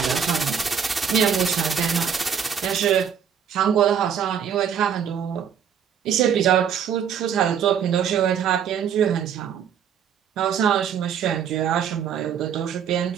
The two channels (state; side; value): quieter; left; 8.0 dB